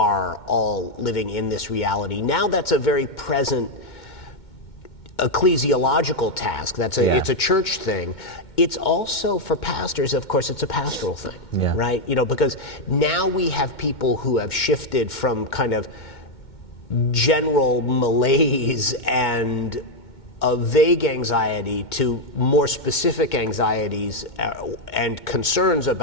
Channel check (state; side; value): late; right; 2.2 ms